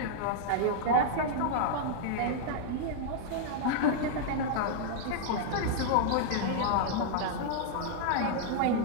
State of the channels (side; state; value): both; different; correlation -0.01